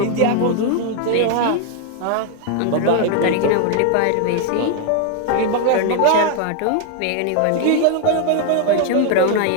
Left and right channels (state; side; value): different; both; correlation 0.00